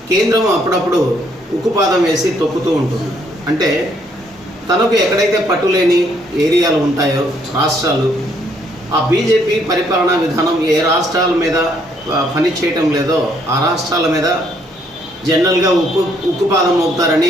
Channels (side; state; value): both; normal; correlation 0.69